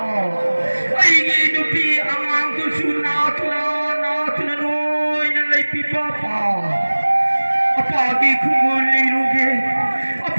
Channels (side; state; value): both; inverted; correlation -1.00